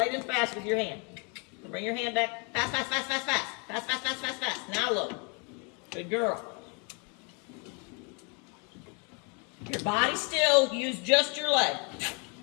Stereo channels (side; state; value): right; quieter; 34.6 dB